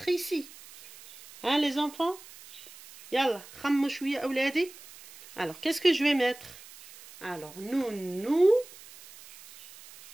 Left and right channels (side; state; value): right; noise; hiss, 19 dB below the sound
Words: ici? Hein, les enfants? Yalla, khammou shouya awladi. Alors, qu'est-ce que je vais mettre? Alors, nous